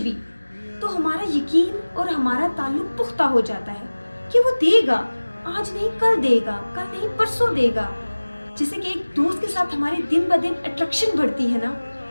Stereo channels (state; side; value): inverted; both; correlation -1.00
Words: تو ہمارا یقین اور ہمارا تعلق پختہ ہو جاتا ہے کہ وہ دے گا. آج نہیں کل دے گا، کل نہیں پرسوں دے گا. جیسے کہ ایک دوست کے ساتھ ہماری دن بہ دن اٹریکشن بڑھتی ہے نا،